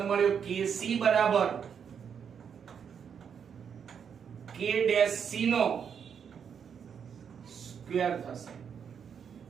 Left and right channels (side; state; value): left; quieter; 7.4 dB